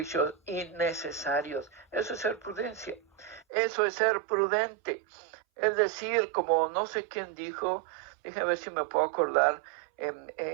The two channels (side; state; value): left; drops out; at 3.5 s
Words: innecesarios. Eso es ser prudencia. Eso es ser prudente. Es decir, como no sé quién dijo, déjame ver si me puedo acordar